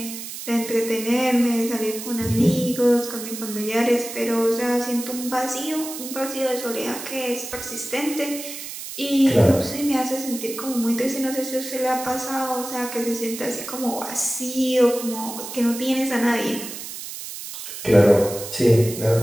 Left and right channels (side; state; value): right; noise; hiss, 9 dB below the sound